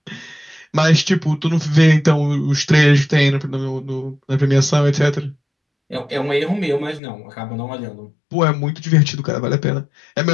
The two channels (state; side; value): drops out; right; at 7.0 s